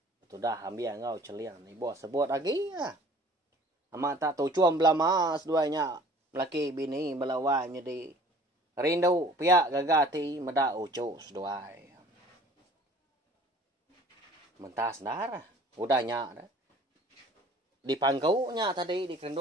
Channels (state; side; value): normal; both; correlation 0.49